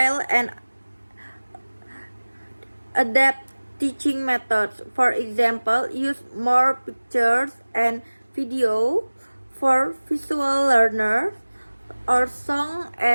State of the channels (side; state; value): both; inverted; correlation -1.00